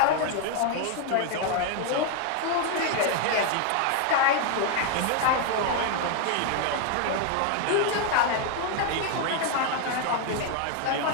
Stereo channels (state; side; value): different; both; correlation 0.01